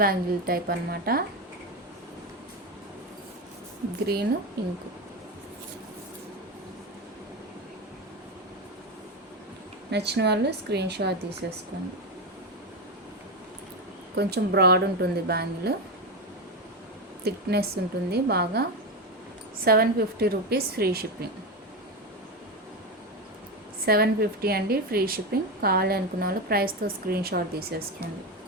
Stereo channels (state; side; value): normal; both; correlation 0.15